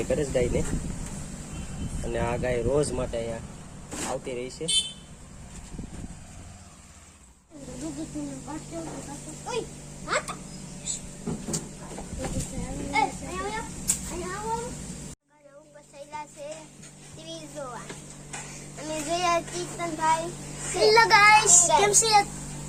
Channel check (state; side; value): identical; both; correlation 1.00